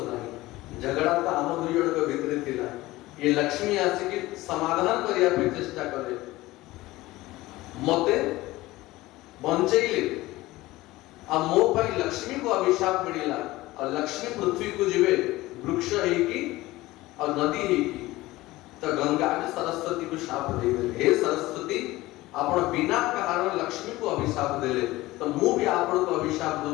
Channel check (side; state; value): right; quieter; 18.5 dB